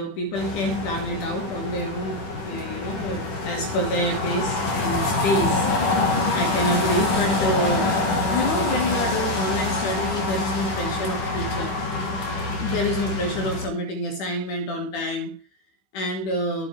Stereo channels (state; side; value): late; right; 10 ms